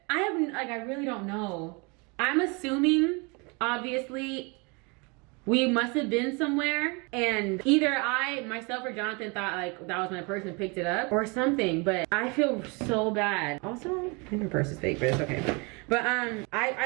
I really don't know. I'm assuming, obviously, we must have been somewhere and either myself or Jonathan thought like that was my purse and picked it up or something, but I feel so bad. Also, I think her purse is fake, but it's okay. But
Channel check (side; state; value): left; quieter; 30.3 dB